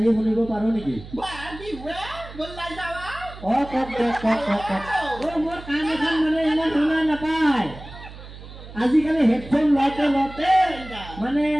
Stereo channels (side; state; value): right; noise; hum, 15 dB below the sound